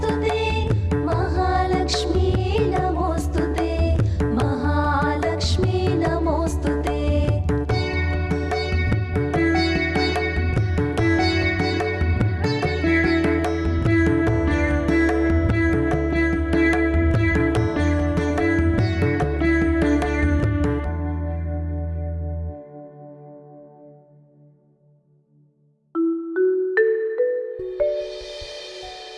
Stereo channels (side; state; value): both; identical; correlation 1.00